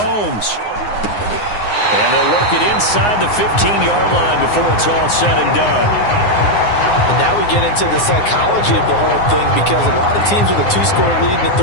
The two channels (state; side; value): late; right; 9.7 ms